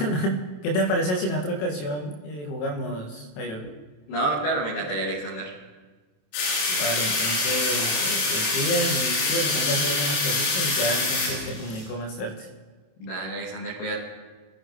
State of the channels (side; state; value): right; late; 27 ms